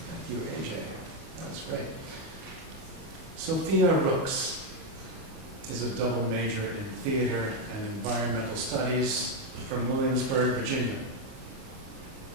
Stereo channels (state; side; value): late; left; 37 ms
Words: You, AJ. That was great. Sophia Rooks is a double major in theater and environmental studies from Williamsburg, Virginia.